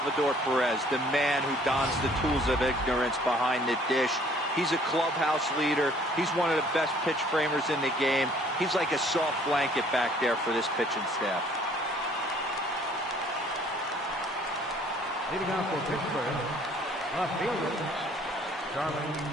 Perez, the man who dons the tools of ignorance behind the dish. He's a clubhouse leader. He's one of the best pitch framers in the game. He's like a soft blanket back there for this pitching staff. Leading off for Pittsburgh, left fielder, Charlie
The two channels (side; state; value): both; normal; correlation 0.57